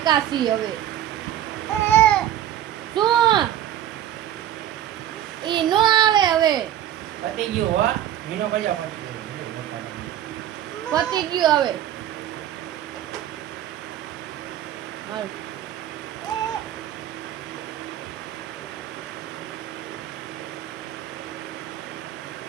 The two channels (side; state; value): left; quieter; 11.7 dB